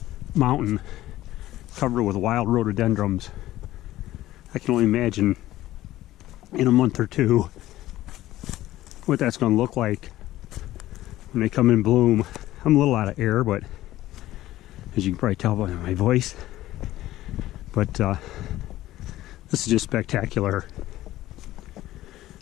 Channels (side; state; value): right; quieter; 15.2 dB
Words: mountain covered with wild rhododendrons. I can only imagine in a month or two what that's going to look like when they come in bloom. I'm a little out of air, but as you can probably tell by my voice, but this is just spectacular.